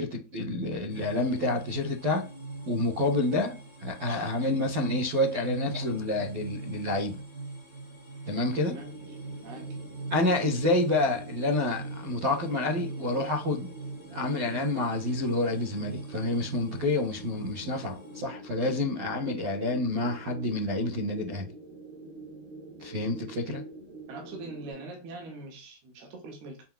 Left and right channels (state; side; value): late; left; 12 ms